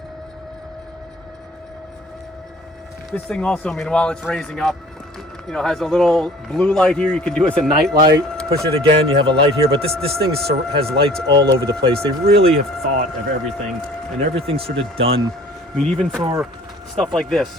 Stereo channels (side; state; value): both; normal; correlation 0.49